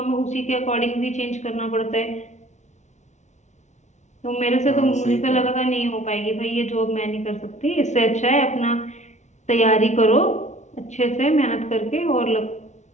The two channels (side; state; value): right; late; 0.34 ms